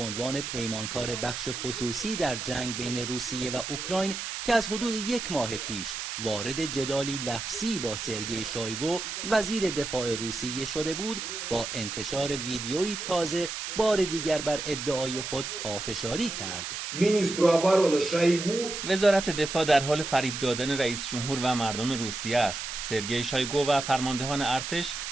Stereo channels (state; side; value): noise; right; hiss, 5 dB below the sound